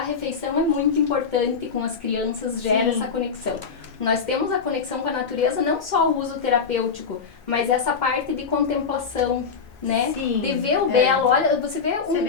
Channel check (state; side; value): quieter; right; 5.7 dB